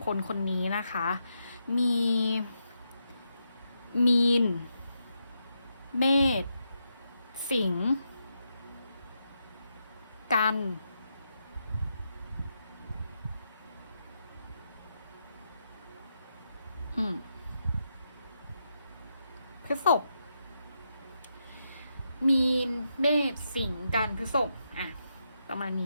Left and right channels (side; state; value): both; inverted; correlation -0.83